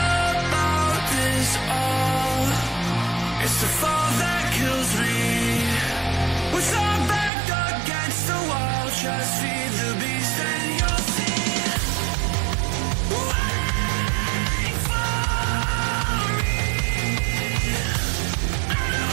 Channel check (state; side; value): drops out; left; at 7.3 s